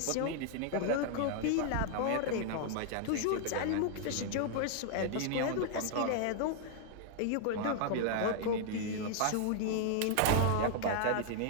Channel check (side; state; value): both; different; correlation 0.00